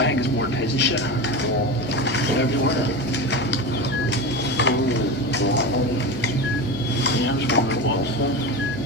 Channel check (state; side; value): noise; left; hum, 28 dB below the sound